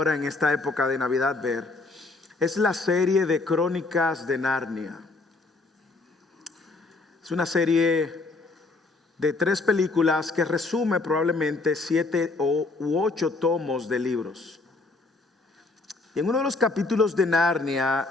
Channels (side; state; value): right; quieter; 3.4 dB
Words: en esta época de Navidad ver, es la serie de Crónicas de Narnia. Es una serie de 3 películas que resume probablemente 7 u 8 tomos de libros. Y en uno de los capítulos de Narnia,